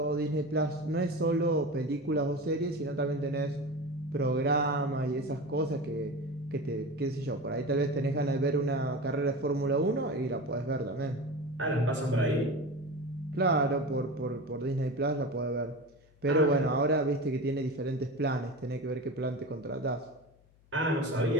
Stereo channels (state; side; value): noise; left; hum, 30 dB below the sound